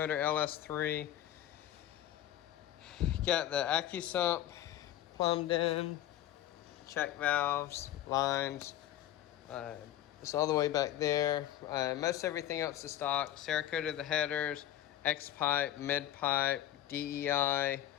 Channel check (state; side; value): quieter; right; 12.7 dB